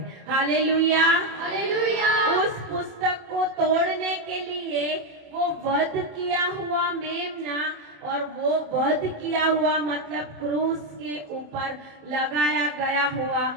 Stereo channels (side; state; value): left; late; 27 ms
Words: Hallelujah, hallelujah. उस पुस्तक को तोड़ने के लिए वो वध किया हुआ मेमना, और वो वध किया हुआ मतलब क्रूस के ऊपर लगाया गया हुआ